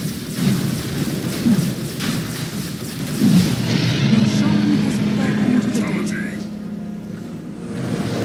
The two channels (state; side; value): identical; both; correlation 1.00